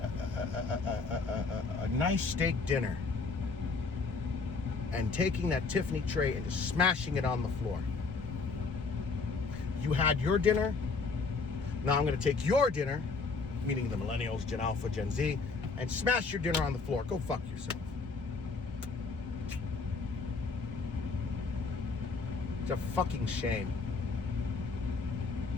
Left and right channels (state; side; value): quieter; right; 4.4 dB